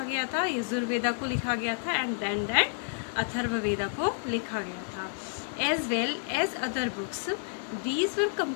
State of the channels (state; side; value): silent; right; digital silence